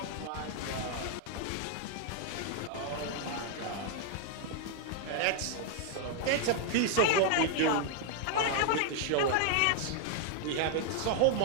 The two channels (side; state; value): both; different; correlation 0.00